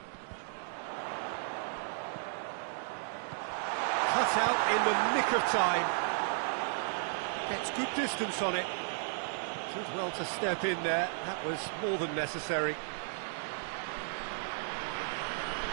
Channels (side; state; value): left; silent; digital silence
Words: Cut out in the nick of time. Gets good distance on it. Did well to step in there. That was more than necessary.